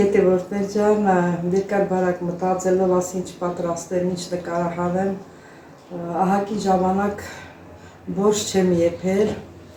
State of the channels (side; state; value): both; identical; correlation 1.00